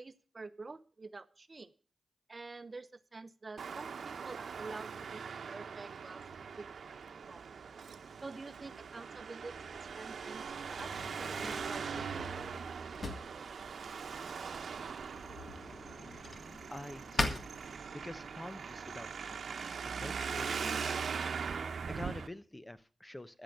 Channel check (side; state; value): left; quieter; 3.2 dB